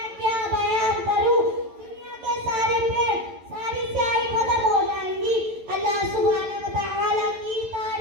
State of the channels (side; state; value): left; late; 11 ms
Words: क्या बयान करूं। दुनिया के सारे पेड़, सारी स्याही खत्म हो जाएंगी, अल्लाह सुब्हानहू व तआला की